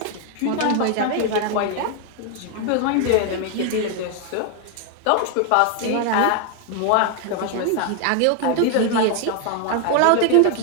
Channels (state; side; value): different; both; correlation 0.01